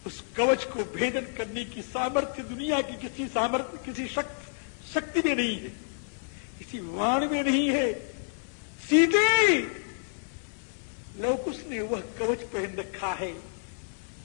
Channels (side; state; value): right; silent; 58 dB below the other